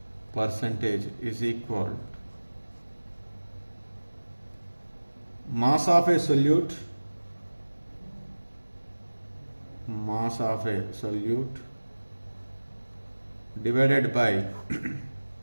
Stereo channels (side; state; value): both; inverted; correlation -1.00